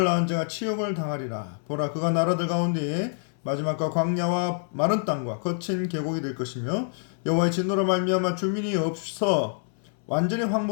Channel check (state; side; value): silent; right; 59 dB below the other